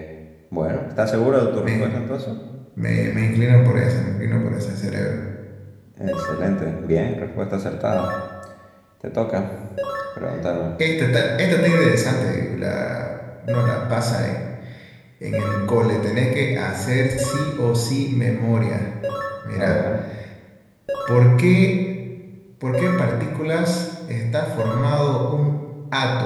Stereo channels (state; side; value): identical; both; correlation 1.00